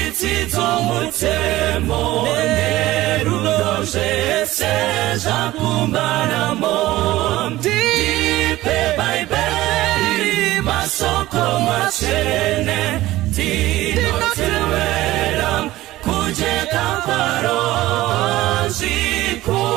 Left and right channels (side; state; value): left; quieter; 16.6 dB